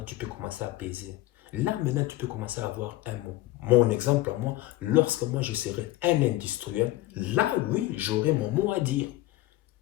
tu peux commencer à peser. Là maintenant tu peux commencer à avoir un mot. Mon exemple à moi, lorsque moi je serai un industriel, là oui, j'aurai mon mot à dire.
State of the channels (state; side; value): quieter; right; 17.1 dB